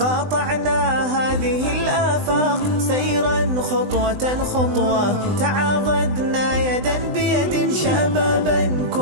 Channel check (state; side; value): late; left; 20 ms